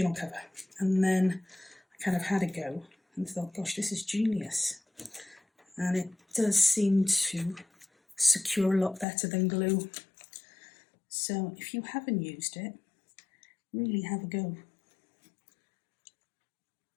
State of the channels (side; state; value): right; drops out; at 9.1 s